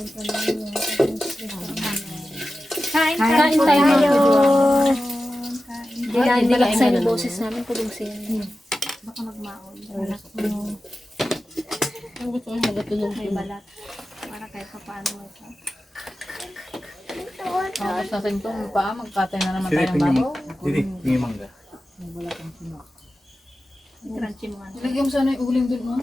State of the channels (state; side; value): normal; both; correlation 0.93